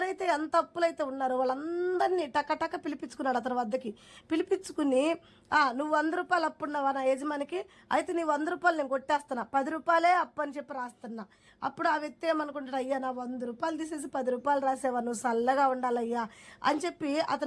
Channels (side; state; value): both; identical; correlation 1.00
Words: ఎంత అప్పులైతే ఉన్నారో వాళ్ళందరినీ టకటక పిలిపించుకున్నాడు అతని వద్దకి. పిలిపించుకుని, నువ్వు 100 రూపాయలు అప్పున్నావా నా యజమానికి, అయితే నీ 100 రూపాయలు నేను కొట్టేస్తున్నా, 10 రూపాయలే అప్పు అని చెప్పి రాస్తున్నా. అప్పుడు ఆ వ్యక్తి ఏమనుకుంటాడు, అయ్యా నా 100 రూపాయలు తీసేసి 10 రూపాయలు రాసేవా, నువ్వు చల్లగా ఉండాలయ్యా అని చెప్పి